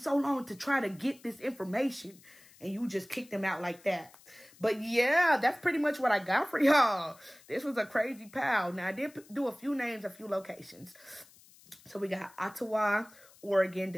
long to try to get this information. And you just kicked them out like that. But yeah, that's pretty much what I got for y'all. This was a crazy pal. Now, I did do a few names, a few locations. So we got Ottawa, Oregon,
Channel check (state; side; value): noise; left; hiss, 25 dB below the sound